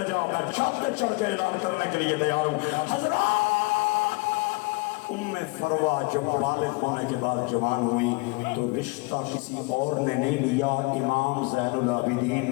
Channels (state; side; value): quieter; right; 26.8 dB